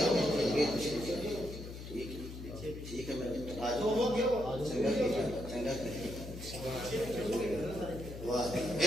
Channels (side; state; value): left; noise; hum, 10 dB below the sound